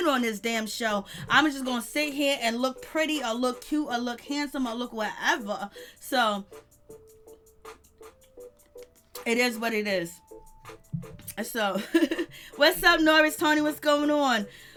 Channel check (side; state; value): both; identical; correlation 1.00